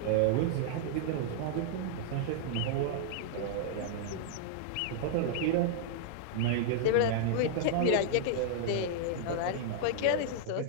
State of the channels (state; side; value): different; both; correlation -0.01